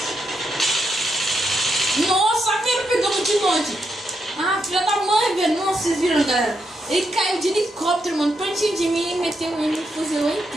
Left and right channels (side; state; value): both; normal; correlation 0.81